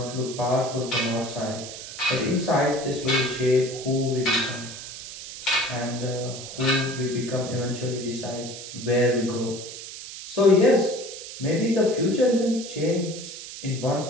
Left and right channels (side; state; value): right; noise; hiss, 11 dB below the sound